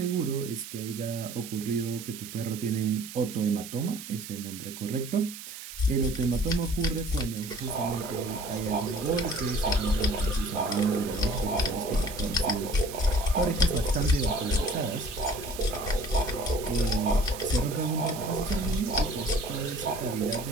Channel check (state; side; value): noise; right; hiss, 12 dB below the sound